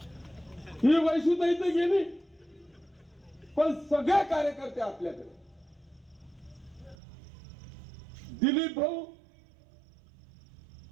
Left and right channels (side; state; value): left; drops out; at 7.0 s